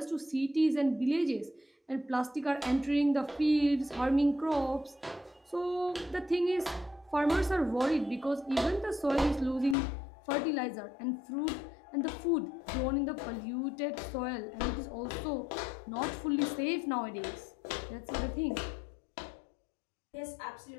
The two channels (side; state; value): right; drops out; at 9.8 s